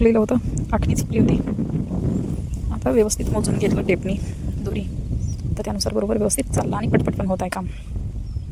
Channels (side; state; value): both; identical; correlation 1.00